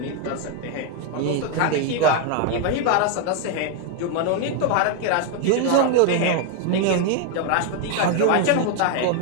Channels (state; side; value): different; both; correlation 0.01